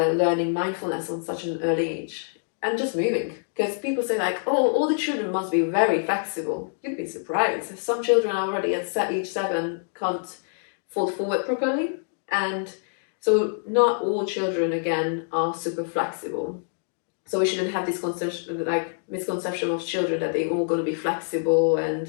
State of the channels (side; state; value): right; silent; digital silence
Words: mindfulness on such an early age. And just moving, because people say like, oh, all the children must be very flexible. You'd be surprised. Some children already at age 7 can't fold forward properly, and so not all children again are super flexible. So we shouldn't have this misconception of children that they're all going to be flexible